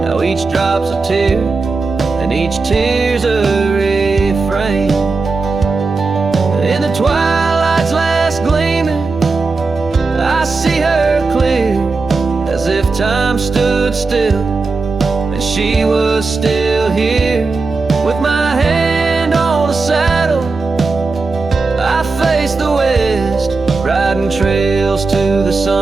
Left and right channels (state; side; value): quieter; left; 4.0 dB